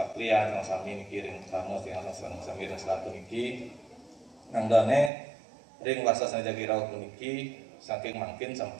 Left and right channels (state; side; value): drops out; left; at 5.1 s